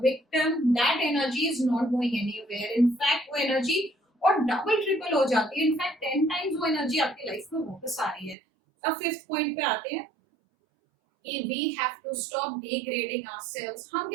victim, that energy is not going anywhere. In fact वो एनर्जी और डबल ट्रिपल हो जाती है, इनफैक्ट 10 टाइम्स वो एनर्जी आपकी लाइफ में वापस आ रही है। अब फिफ्थ पॉइंट पे आते हैं कि we have to stop degrading ourselves। हम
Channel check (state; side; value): drops out; left; at 8.3 s